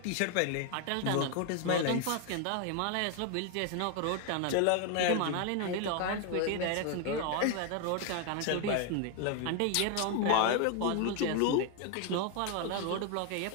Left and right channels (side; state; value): both; different; correlation 0.01